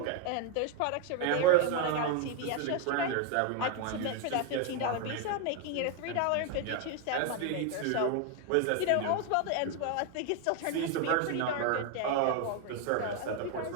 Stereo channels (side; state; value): both; different; correlation 0.01